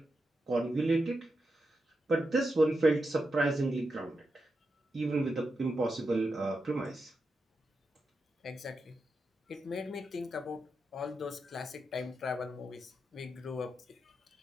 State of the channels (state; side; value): normal; both; correlation 0.87